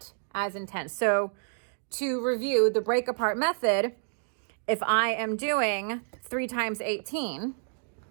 as intense. So to review the break apart method, if I am doing 3 times 18,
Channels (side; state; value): left; silent; digital silence